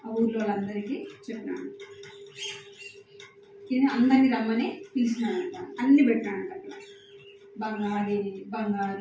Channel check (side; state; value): both; identical; correlation 1.00